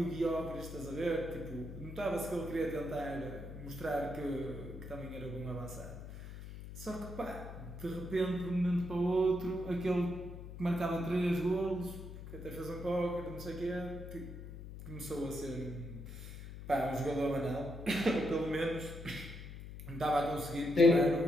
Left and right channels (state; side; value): noise; left; hum, 11 dB below the sound